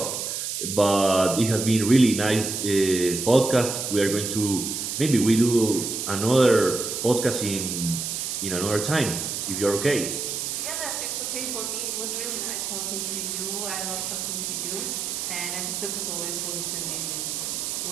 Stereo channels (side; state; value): right; noise; hiss, 3 dB below the sound